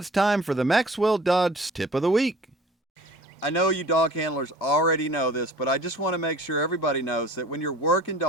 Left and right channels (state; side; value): normal; both; correlation 0.46